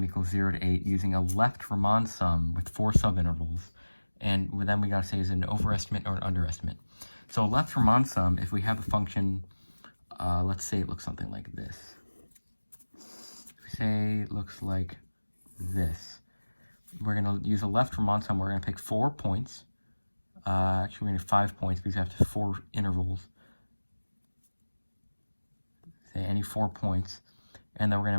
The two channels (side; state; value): both; inverted; correlation -1.00